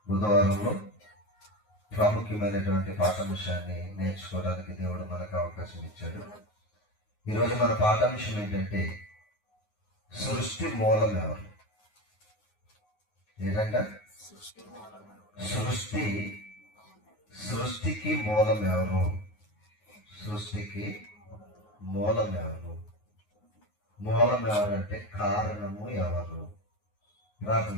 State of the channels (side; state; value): right; late; 9.5 ms